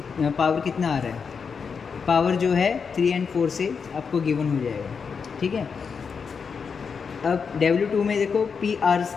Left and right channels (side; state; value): right; quieter; 5.9 dB